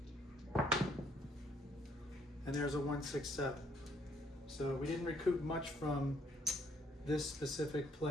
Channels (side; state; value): both; normal; correlation 0.67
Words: And there's a 1, 6, 7. So we didn't recoup much from this specific